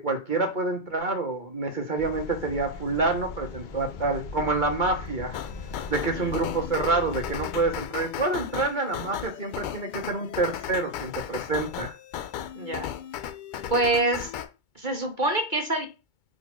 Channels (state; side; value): late; right; 2.2 ms